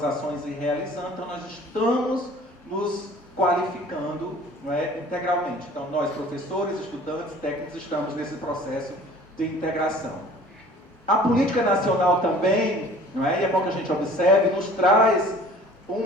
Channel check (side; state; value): both; normal; correlation 0.49